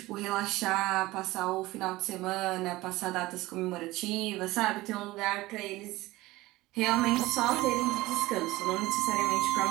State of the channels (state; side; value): quieter; left; 18.9 dB